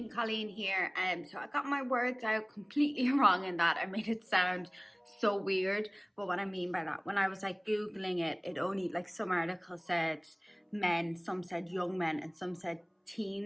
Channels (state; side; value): identical; both; correlation 1.00